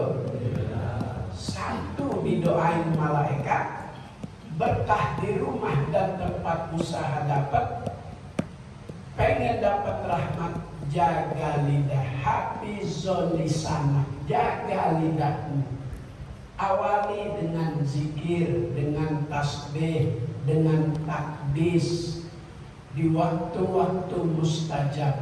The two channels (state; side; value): identical; both; correlation 1.00